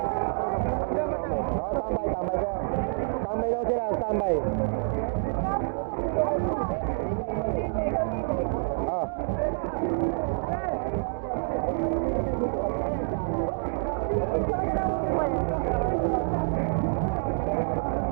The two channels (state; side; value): silent; left; digital silence